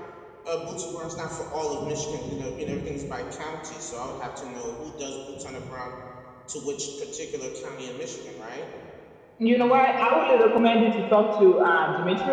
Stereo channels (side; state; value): both; identical; correlation 1.00